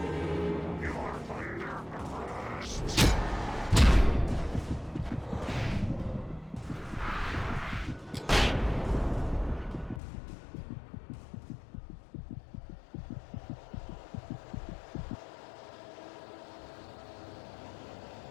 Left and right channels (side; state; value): right; drops out; at 10.0 s